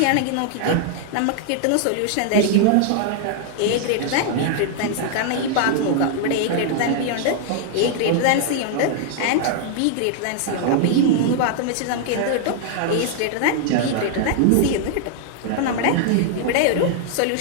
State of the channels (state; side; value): different; both; correlation -0.01